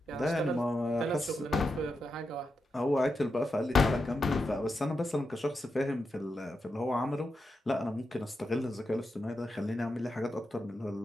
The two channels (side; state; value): both; normal; correlation 0.87